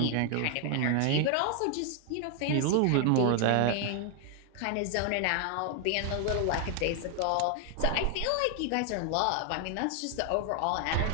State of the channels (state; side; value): different; both; correlation 0.00